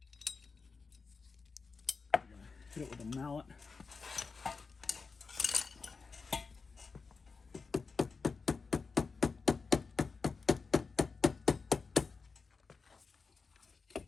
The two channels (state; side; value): quieter; right; 4.7 dB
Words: Hit it with a mallet.